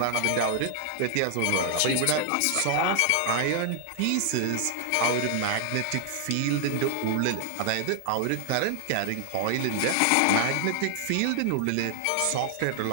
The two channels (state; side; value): different; both; correlation 0.00